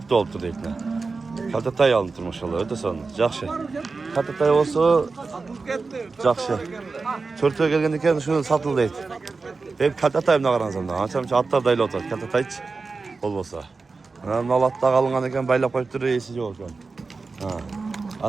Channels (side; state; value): left; quieter; 4.2 dB